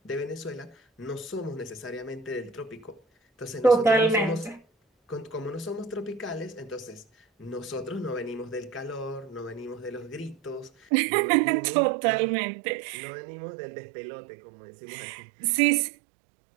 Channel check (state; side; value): drops out; left; at 10.7 s